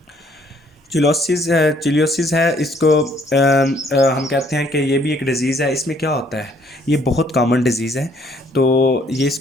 चिलियोसिस है। इसको हम कहते हैं कि ये भी एक डिज़ीज़ है। इसमें क्या होता है, ये बहुत कॉमन डिज़ीज़ है। तो ये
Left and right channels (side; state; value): both; normal; correlation 0.63